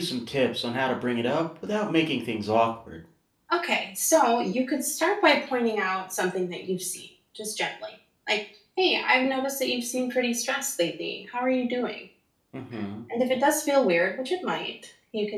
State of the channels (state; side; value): identical; both; correlation 1.00